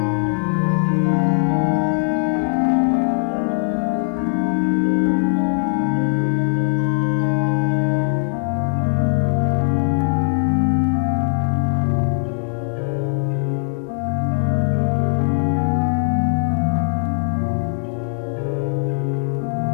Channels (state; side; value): silent; right; digital silence